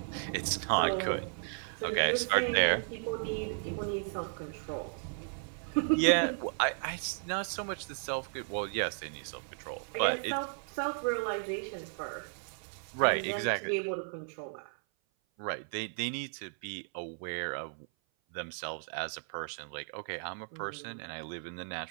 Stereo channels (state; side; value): silent; left; 55 dB below the other